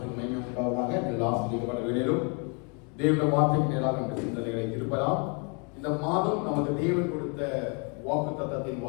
மகிமை உண்டாவதாக. எல்லா ஆசீர்வாதப்பட்ட வேளையிலும் தேவனுடைய வார்த்தைக்கு நேராக நம்முடைய சிந்தனைகளை திருப்பலாம். இந்த மாதம் நமக்கு தேவன் கொடுத்த வாக்குத்தத்தத்தின்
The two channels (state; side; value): quieter; right; 35.5 dB